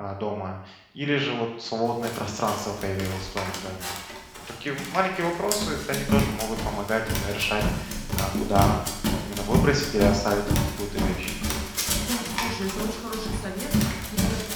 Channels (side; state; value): both; identical; correlation 1.00